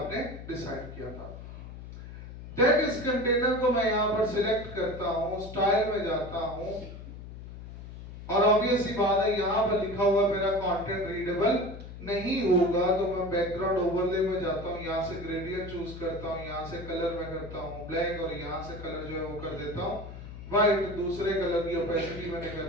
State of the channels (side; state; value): left; noise; hum, 12 dB below the sound